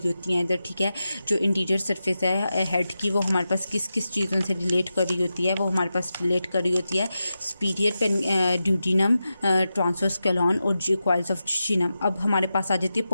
होती हैं इधर, ठीक है। जो इंटीरियर सरफेस है हेड की वो हमारे पास किस किस चीज़ों से रिलेट कर रही होती है, वो हमारे पास रिलेट कर रही होती है सुपीरियर ड्यूडिनम, ट्रांसवर्स कैलॉन और कॉइल्स ऑफ ज्यूजिनम। अब हमारे पास आ जाती है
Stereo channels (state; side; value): inverted; both; correlation -0.91